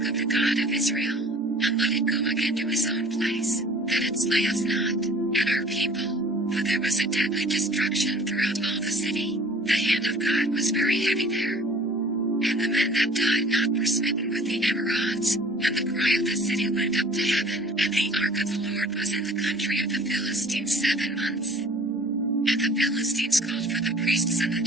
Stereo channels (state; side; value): normal; both; correlation 0.49